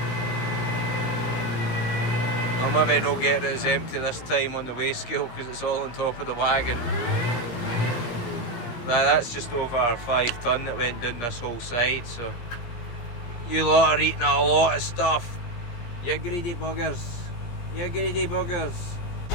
I'll maybe not get it as empty this time on the weigh scale because it's all on top of the wagon. But that's just over 5 tonne that went down this whole side, so you lot are eating a lot of stuff. You greedy buggers. You greedy buggers.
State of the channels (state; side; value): late; right; 17 ms